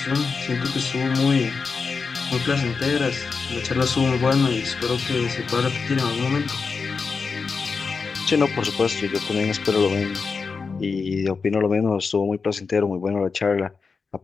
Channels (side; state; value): right; quieter; 4.9 dB